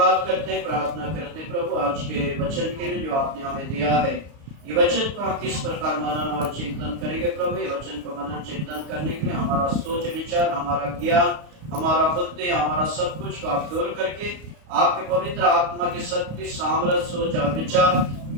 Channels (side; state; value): left; late; 33 ms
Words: करते हैं, प्रार्थना करते हैं प्रभु आज के वचन के लिए जो आपने हमें दिया है। ये वचन को हम किस प्रकार मनन और चिंतन करेंगे प्रभु। ये वचन को मनन चिंतन करने के लिए हमारा सोच विचार, हमारा ज्ञान, हमारा बुद्धि, हमारा सब कुछ को आप दूर करके आपके पवित्र आत्मा की शक्ति, सामर्थ, सोच और विचार,